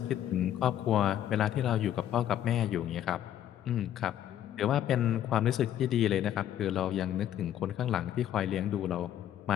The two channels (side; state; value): right; quieter; 11.1 dB